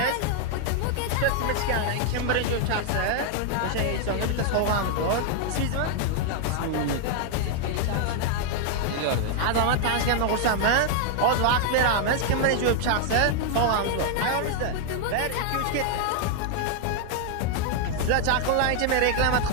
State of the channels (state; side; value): different; both; correlation 0.00